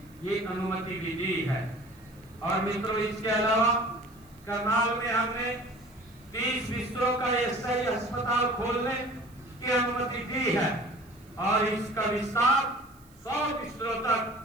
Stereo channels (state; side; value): noise; right; hiss, 28 dB below the sound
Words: ये अनुमति भी दी है। और मित्रों, इसके अलावा करनाल में हमने 30 बिस्तरों का ईएसआई अस्पताल खोलने की अनुमति दी है और इसका विस्तार 100 बिस्तरों